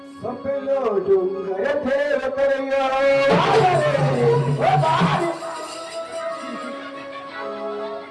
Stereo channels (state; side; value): identical; both; correlation 1.00